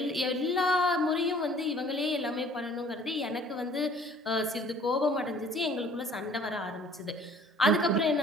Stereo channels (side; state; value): both; normal; correlation 0.54